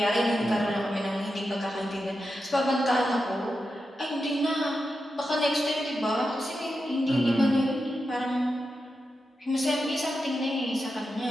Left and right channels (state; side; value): normal; both; correlation 0.89